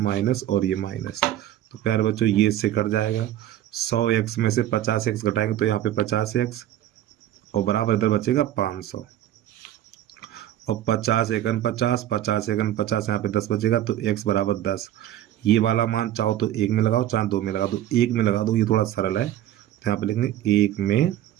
और ये माइनस, तो प्यारे बच्चों ये इससे कट जाएगा। 100x में से 50x घटाएंगे तो यहाँ पे 50x और बराबर इधर बचेगा 500 और 50 एकन 50, 50 एकन 50, यहाँ पे 10 बचेगा। तो x बराबर 10। ये वाला मान चाहो तो 1 में लगाओ, चाहे 2 में लगा दो। 1 में लगा दो, ये थोड़ा सरल है। तो यहाँ पे लिखेंगे 1 में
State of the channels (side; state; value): left; quieter; 12.5 dB